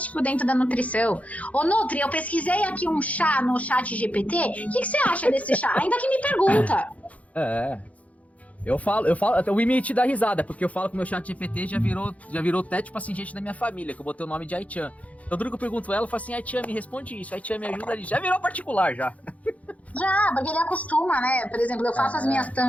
dentro da nutrição. Ô, Nutri, eu pesquisei aqui um chá no chat GPT. O que você acha desse chá? Ainda que me pergunta. Eu falo, até o Imi dá risada, porque eu falo que o meu chat GPT já virou até, tipo assim, gente da minha família, que eu botei o nome de Aichan. Então, tudo que eu pergunto ela, eu falo assim, Aichan, me responde isso, Aichan, me ajuda ali. Já virou particular, já. Já, porque ele acostuma, né? Por exemplo, eu faço as minhas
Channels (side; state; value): right; late; 0.068 ms